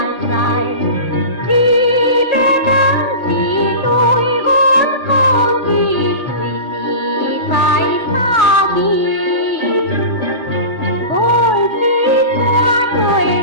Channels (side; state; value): right; late; 1.4 ms